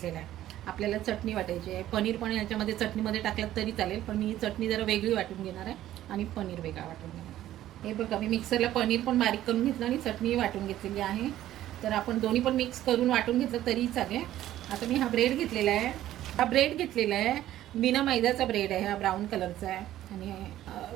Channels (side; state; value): left; quieter; 13.3 dB